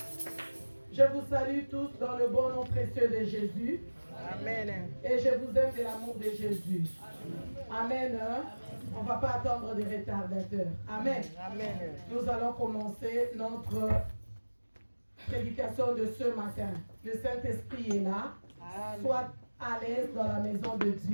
Je vous salue tous dans le bon nom précieux de Jésus. Amen. Et je vous aime de l'amour de Jésus. Amen. On ne va pas attendre des retardateurs. Amen. Amen. Nous allons commencer notre prédication de ce matin. Le Saint-Esprit est là. Amen. Sois à l'aise dans la maison de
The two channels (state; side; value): inverted; both; correlation -1.00